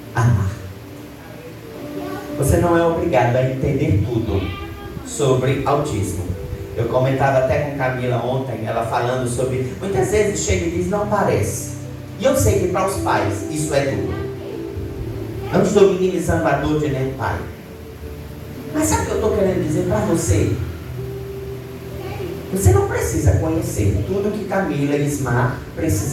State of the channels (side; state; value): both; identical; correlation 1.00